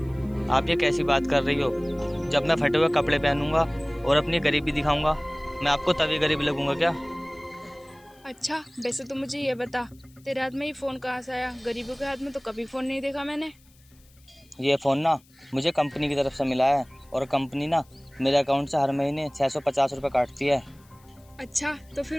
आप ये कैसी बात कर रही हो? जब मैं फटे हुए कपड़े पहनूंगा और अपनी गरीबी दिखाऊंगा, मैं आपको तभी गरीब लगूंगा क्या? अच्छा, वैसे तो मुझे ये बता, तेरे हाथ में ये फ़ोन कहाँ से आया? गरीबों के हाथ में तो कभी फ़ोन नहीं देखा मैंने। ये फ़ोन ना मुझे कंपनी की तरफ से मिला है, और कंपनी ना मेरे अकाउंट से हर महीने 650 रुपये काटती है। अच्छा, तो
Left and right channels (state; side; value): noise; left; hiss, 30 dB below the sound